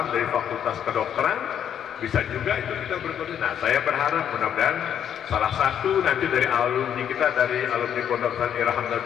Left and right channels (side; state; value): right; quieter; 9.2 dB